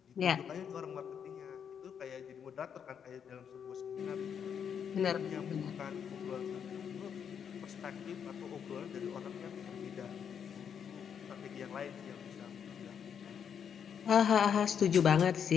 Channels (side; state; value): right; quieter; 7.8 dB